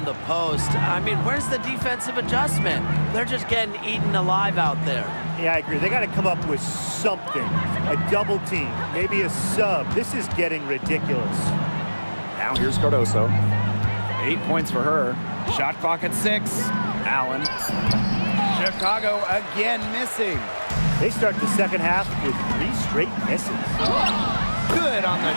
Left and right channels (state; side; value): inverted; both; correlation -1.00